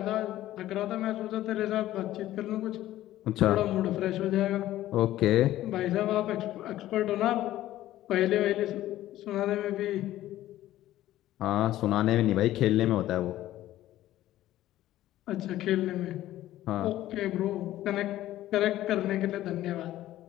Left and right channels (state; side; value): quieter; right; 14.3 dB